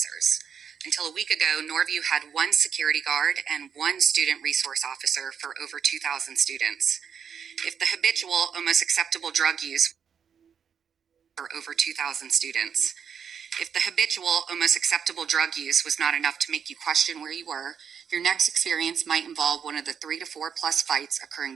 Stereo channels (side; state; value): left; quieter; 7.4 dB